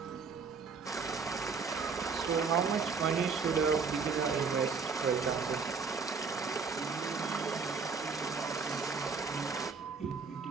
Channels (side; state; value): left; quieter; 5.1 dB